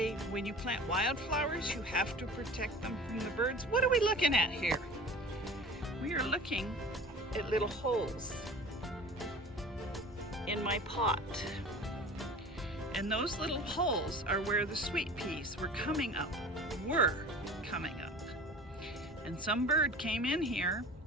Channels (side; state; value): both; normal; correlation 0.39